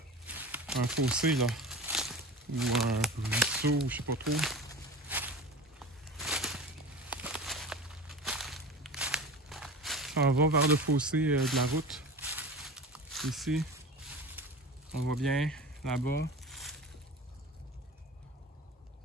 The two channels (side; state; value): both; normal; correlation 0.34